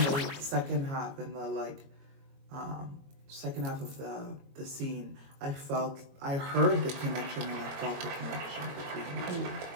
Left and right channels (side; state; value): left; late; 22 ms